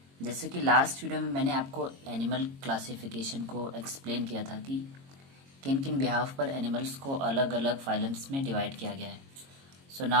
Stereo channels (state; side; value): late; left; 22 ms